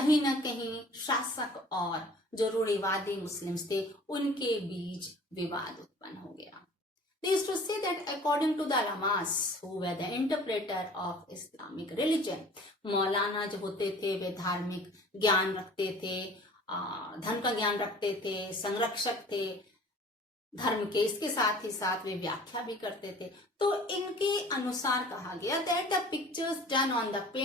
ना कहीं शासक और जो रूढ़िवादी मुस्लिम्स थे उनके बीच विवाद उत्पन्न हो गया. They used to say that according to the ulamas who were the interpreter of Islamic religion, मौलाना जो होते थे वे धार्मिक ज्ञान रखते थे, धर्म का ज्ञान रखते थे, संरक्षक थे धर्म के, इसके साथ ही साथ वे व्याख्या भी करते थे. तो इनके अनुसार कहा गया that the pictures done on the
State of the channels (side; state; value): both; normal; correlation 0.47